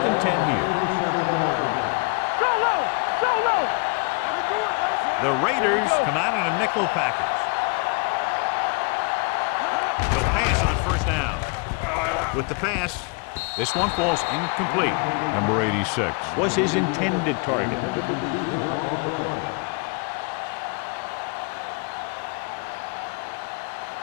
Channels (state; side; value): quieter; right; 32.1 dB